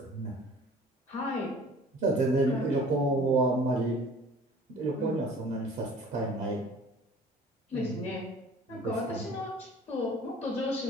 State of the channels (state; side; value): normal; both; correlation 0.48